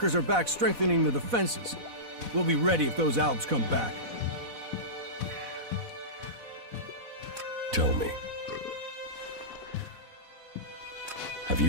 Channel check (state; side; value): late; left; 4.1 ms